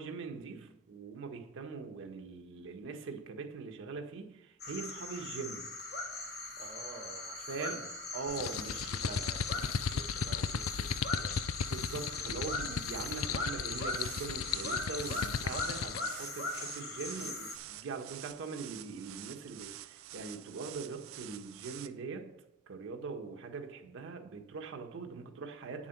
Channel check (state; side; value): normal; both; correlation 0.28